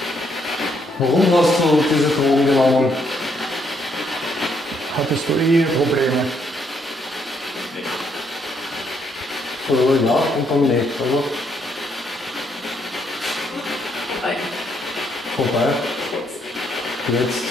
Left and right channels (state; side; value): normal; both; correlation 0.73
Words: Warum hast du diese Drogen genommen? Hattest du Eheprobleme? Oder ja und dann nicht, oder? Vorbei. Jetzt.